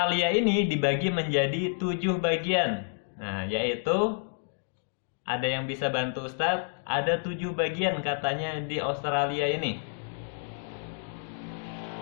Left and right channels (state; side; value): silent; right; digital silence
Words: ini dibagi menjadi 7 bagian. Nah, yaitu ada yang bisa bantu Ustadz? Ada 7 bagian katanya di Australia ini.